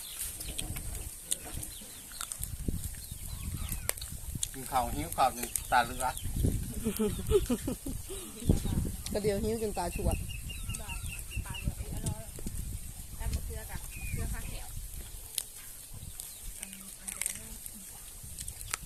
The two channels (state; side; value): identical; both; correlation 1.00